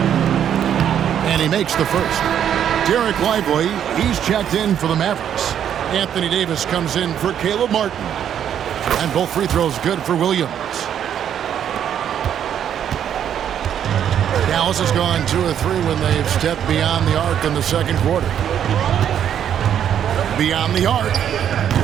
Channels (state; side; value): quieter; left; 9.4 dB